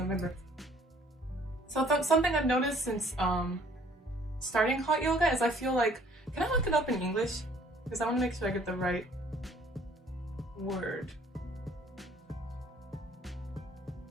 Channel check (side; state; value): both; normal; correlation 0.58